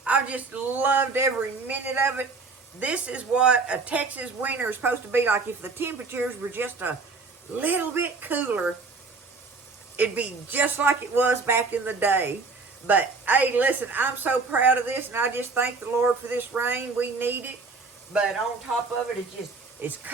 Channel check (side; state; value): left; quieter; 4.1 dB